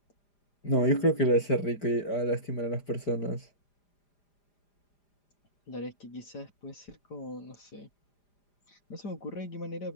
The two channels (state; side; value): late; right; 4.9 ms